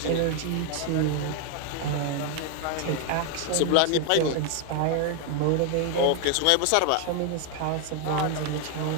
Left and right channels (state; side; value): different; both; correlation 0.01